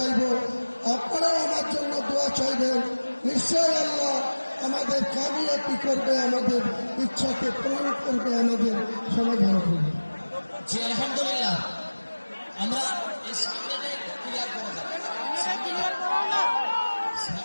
আপনারাও আমার জন্য দোয়া চাইবেন। নিশ্চয় আল্লাহ আমাদের কামিয়াবি করবে, আমাদের ইচ্ছাকে পূরণ করবে, আমাদের সমাধান করবে। জি আলহামদুলিল্লাহ, আমরা এই সামনেটা একটু ক্লিয়ার করে যাব,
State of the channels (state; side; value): inverted; both; correlation -1.00